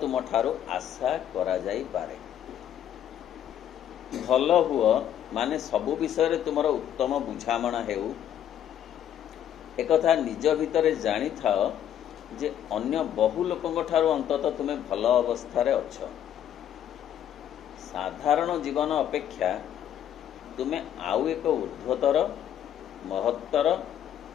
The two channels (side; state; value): right; quieter; 10.4 dB